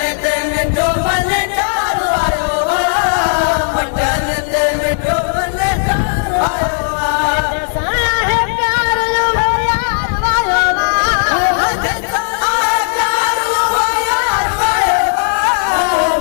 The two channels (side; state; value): right; silent; digital silence